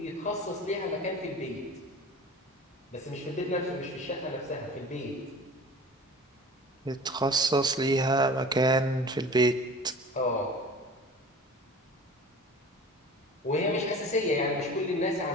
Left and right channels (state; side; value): normal; both; correlation 0.40